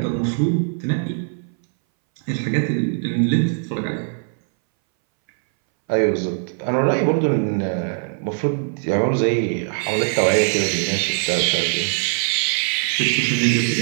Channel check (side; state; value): left; silent; 62 dB below the other